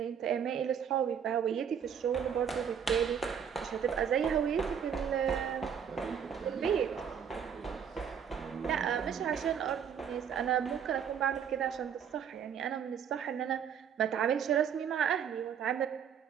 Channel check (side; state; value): left; quieter; 7.9 dB